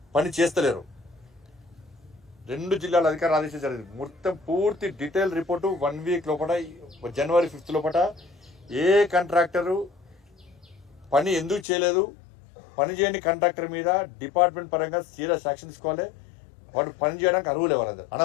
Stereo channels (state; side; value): drops out; right; at 11.7 s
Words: పని చేస్తలేరు 2 జిల్లాల అధికారులు ఆదేశించారు జరిగింది. మొత్తం పూర్తి డీటెయిల్ రిపోర్టు 1 వీక్ లోపల జనవరి 5th లోపల ఏ కాంట్రాక్టరు పని ఎందుకు చేయలేదు, పని చేయని కాంట్రాక్టర్ మీద డిపార్ట్మెంట్ పరంగా సీరియస్ యాక్షన్ తీసుకోవాలి. వాడు పని చేయడానికి అర్హులే, వాళ్ళందరూ